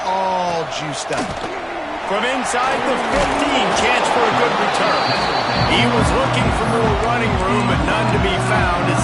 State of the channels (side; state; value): both; identical; correlation 1.00